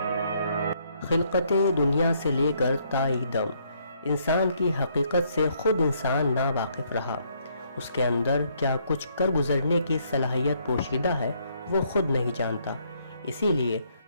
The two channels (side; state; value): both; inverted; correlation -0.70